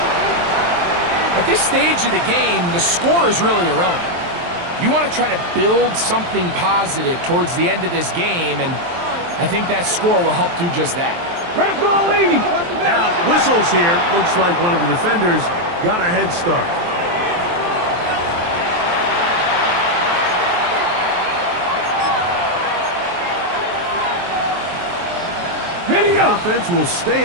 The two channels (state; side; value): late; left; 23 ms